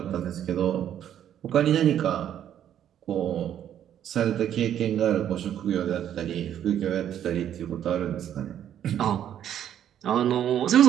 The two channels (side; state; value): left; quieter; 10.3 dB